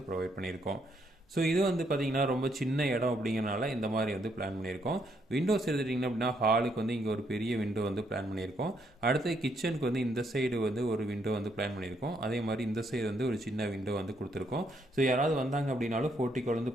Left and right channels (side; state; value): both; normal; correlation 0.73